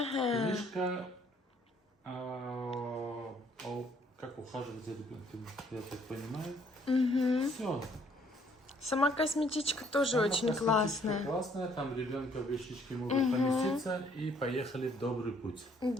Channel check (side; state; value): both; normal; correlation 0.64